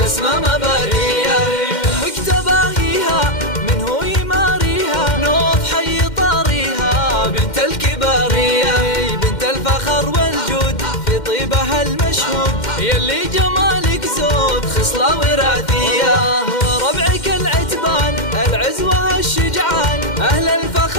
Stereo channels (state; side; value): late; right; 2.1 ms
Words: مبارية، امك تباهيها من هو يماريها، نوف حي طاريها بنت الكبارية، بنت الفخر والجود في طيبها المشهود، يلي جمالك زود خصلة وراثية، وربعك العتبان العزوة الشجعان، أهل